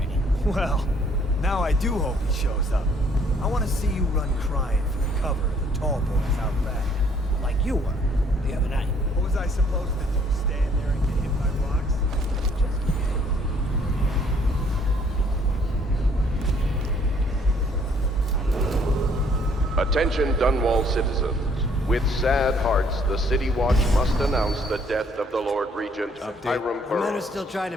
Well, now I do hope he shows up. I want to see you run crying for the cover of the tall boys out back. Like you were, the other night. What was I supposed to do, stand there and get hit by rocks? Attention Dunwall citizens. With sad hearts, the City Watch must announce the death of the Lord Regent, Hiram The men are Burrows. still trying to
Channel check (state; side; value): normal; both; correlation 0.63